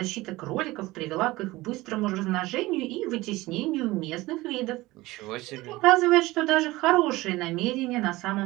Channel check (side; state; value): left; quieter; 19.5 dB